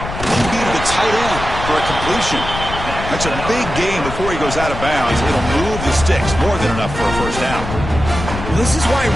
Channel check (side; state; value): left; noise; rumble, 7 dB below the sound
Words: He beat the tight end for a completion. That's a big gain before he goes out of bounds. It'll move the sticks more than enough for a first down. This is why